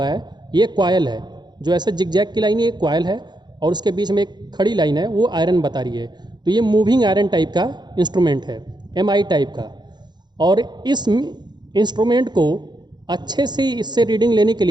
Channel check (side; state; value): left; late; 0.21 ms